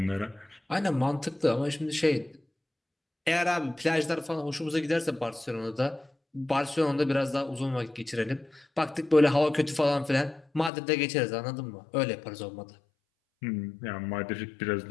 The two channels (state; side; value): drops out; right; at 10.7 s